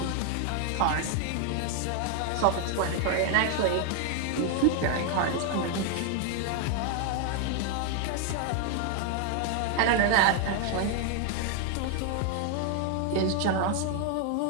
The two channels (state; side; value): different; both; correlation 0.00